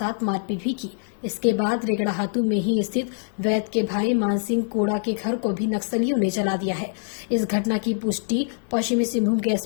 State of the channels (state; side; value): silent; right; digital silence